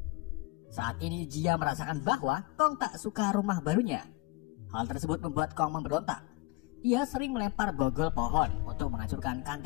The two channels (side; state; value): right; quieter; 23.2 dB